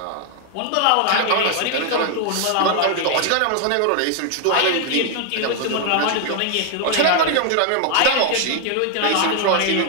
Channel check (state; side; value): different; both; correlation 0.00